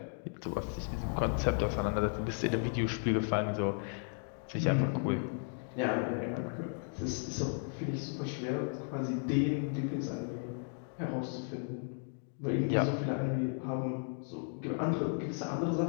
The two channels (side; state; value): right; silent; 55 dB below the other